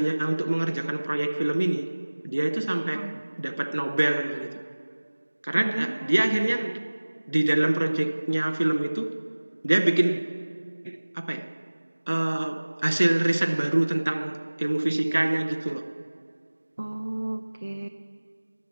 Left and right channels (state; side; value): inverted; both; correlation -1.00